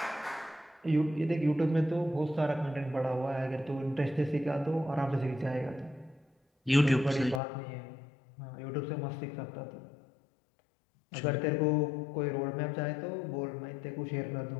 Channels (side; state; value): right; drops out; at 7.4 s